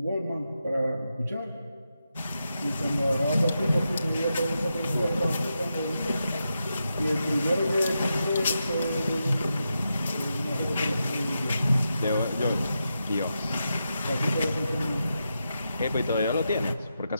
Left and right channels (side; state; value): both; inverted; correlation -0.87